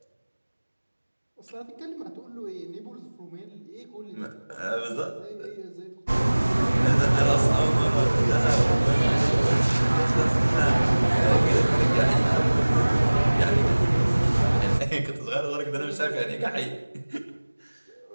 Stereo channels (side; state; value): both; inverted; correlation -1.00